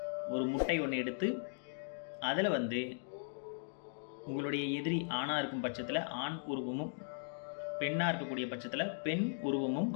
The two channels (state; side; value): silent; right; digital silence